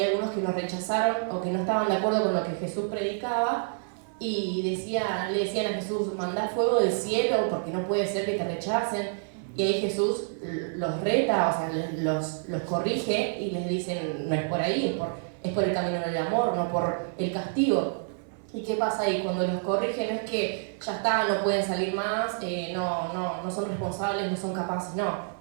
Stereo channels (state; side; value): silent; left; digital silence